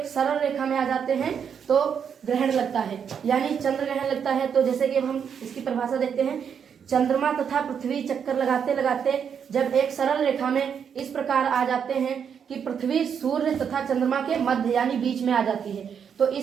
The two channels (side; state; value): left; quieter; 7.4 dB